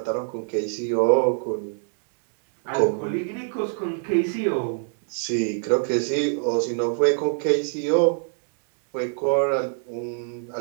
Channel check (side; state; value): left; silent; digital silence